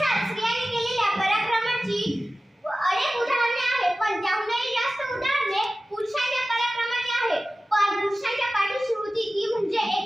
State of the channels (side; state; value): both; normal; correlation 0.96